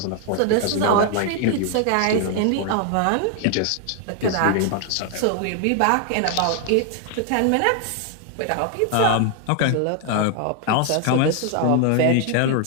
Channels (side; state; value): both; different; correlation 0.00